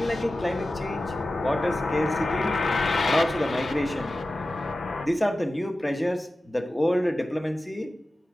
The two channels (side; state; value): both; normal; correlation 0.94